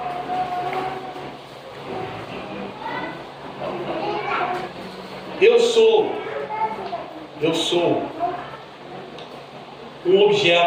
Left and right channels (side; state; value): both; identical; correlation 1.00